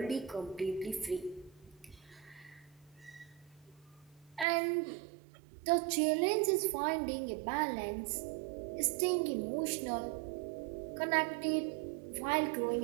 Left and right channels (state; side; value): drops out; left; at 4.5 s